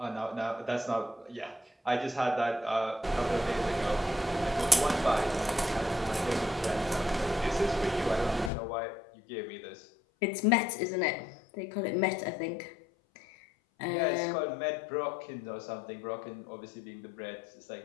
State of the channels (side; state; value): right; drops out; at 8.5 s